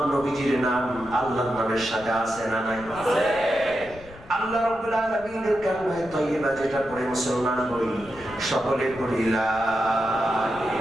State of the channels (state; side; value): noise; left; rumble, 20 dB below the sound